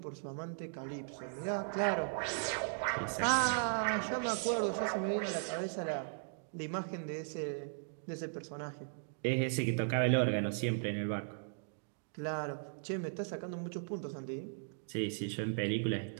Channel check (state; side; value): silent; left; digital silence